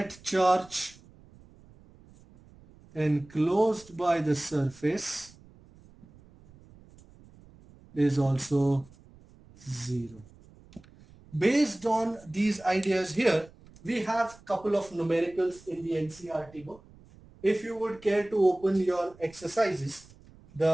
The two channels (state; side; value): noise; right; rumble, 24 dB below the sound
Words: charge enclosed by the surface is also 0. Based on these ideas here, we have couple of numericals in the NCERT book. If you would care to open your exercises,